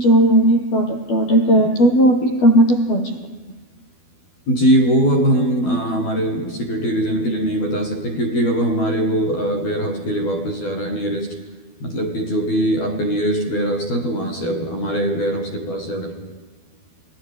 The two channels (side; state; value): right; late; 12 ms